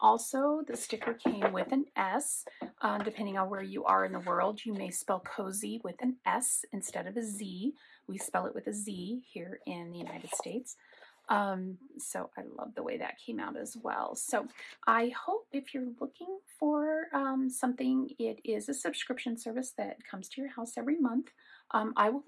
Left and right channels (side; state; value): both; identical; correlation 1.00